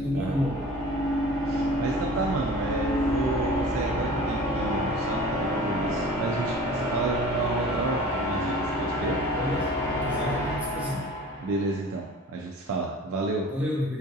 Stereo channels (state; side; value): normal; both; correlation 0.42